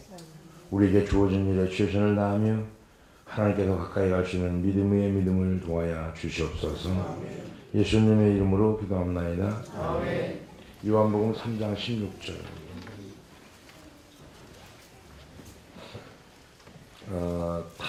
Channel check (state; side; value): identical; both; correlation 1.00